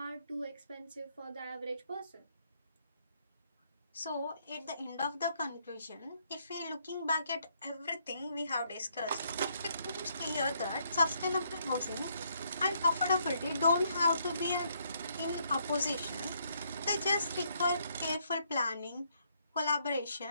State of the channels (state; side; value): inverted; both; correlation -0.72